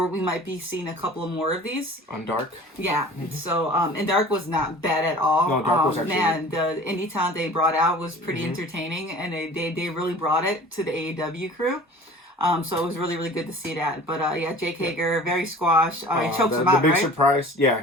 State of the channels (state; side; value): normal; both; correlation 0.44